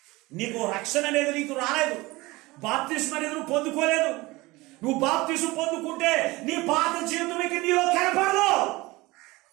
నీకు రక్షణ అనేది నీకు రాలేదు, బాప్తిస్మం అనేది నువ్వు పొందుకోలేదు. నువ్వు బాప్తిస్మం పొందుకుంటే నీ పాత జీవితం ఇక నీలో కనపడదు.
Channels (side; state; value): left; quieter; 21.3 dB